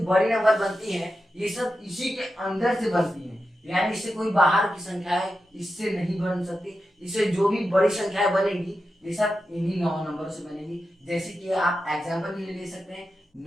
बड़ी नंबर बनती हैं ये सब इसी के अंदर से बनती हैं, यानी इससे कोई बाहर की संख्याएं इससे नहीं बन सकती। इससे जो भी बड़ी संख्याएं बनेगी ये सब इन्हीं 9 नंबरों से बनेगी। जैसे कि आप एग्जांपल भी ले सकते हैं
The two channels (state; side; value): normal; both; correlation 0.90